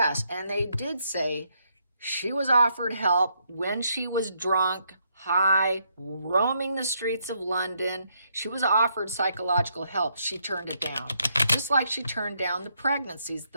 and they did say she was offered help when she was drunk, high, roaming the streets of London. She was offered psychological help. She turned it down. Just like she turned down the pregnancies,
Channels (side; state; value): both; inverted; correlation -0.75